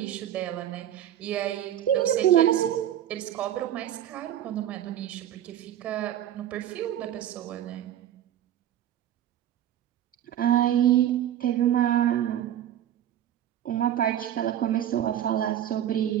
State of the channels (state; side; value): quieter; left; 11.4 dB